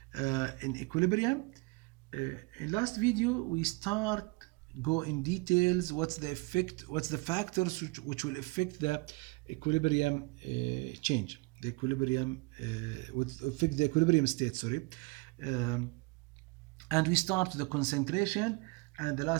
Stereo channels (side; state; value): left; quieter; 26.5 dB